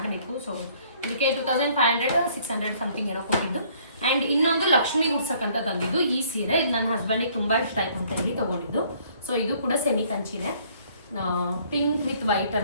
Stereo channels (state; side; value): inverted; both; correlation -0.61